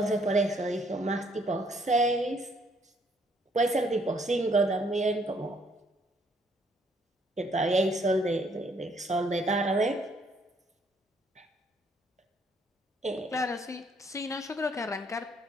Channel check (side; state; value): both; normal; correlation 0.67